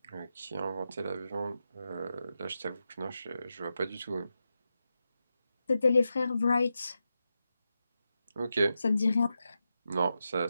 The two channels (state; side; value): inverted; both; correlation -0.88